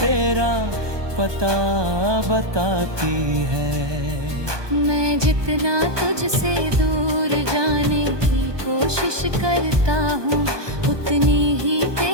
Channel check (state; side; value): late; left; 1.2 ms